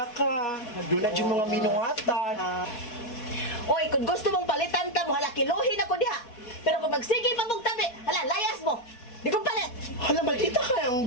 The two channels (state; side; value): late; right; 4.6 ms